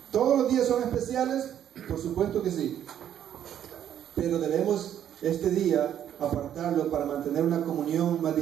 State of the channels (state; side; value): quieter; left; 10.2 dB